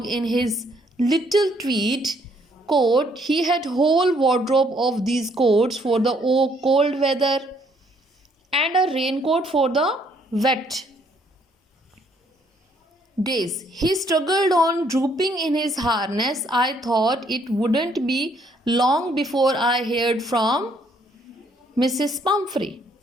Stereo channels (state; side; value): normal; both; correlation 0.67